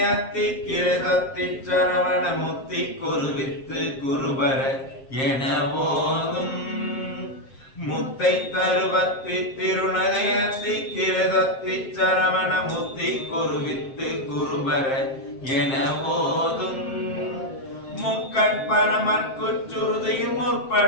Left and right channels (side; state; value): right; late; 7.5 ms